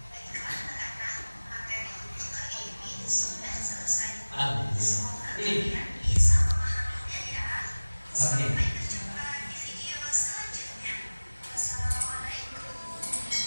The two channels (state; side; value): inverted; both; correlation -1.00